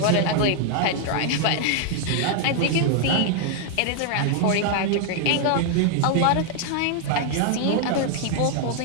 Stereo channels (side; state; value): both; different; correlation 0.00